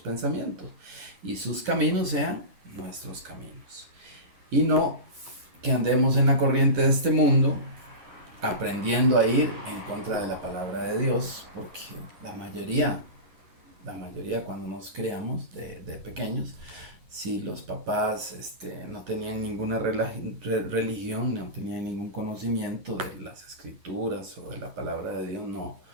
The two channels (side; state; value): left; late; 10 ms